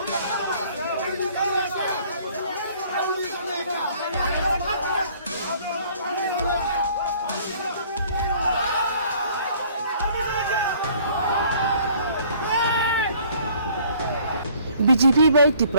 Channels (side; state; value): both; inverted; correlation -0.57